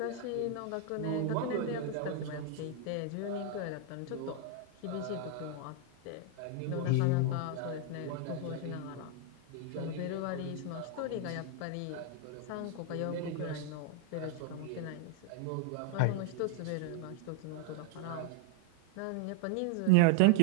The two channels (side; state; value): both; different; correlation 0.00